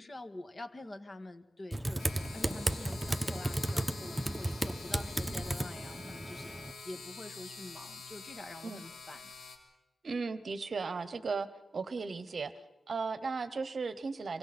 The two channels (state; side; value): normal; both; correlation 0.95